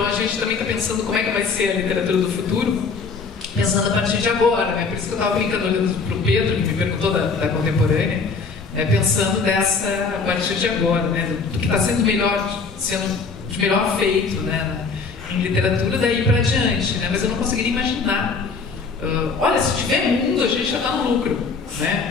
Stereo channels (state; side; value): quieter; right; 4.7 dB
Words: a gente também está pensando como é que vai ser a literatura do futuro, pensando a partir de agora, né? Por isso que eu estava brincando olhando para o Pedro, que me perguntou da contemporânea, pensando a partir de agora, né? Do que está sendo de melhor feito, né? Em literatura daí para adiante, né? Mas eu não conseguiria imaginar. Olha, se tiver mundo, a gente já está no lucro,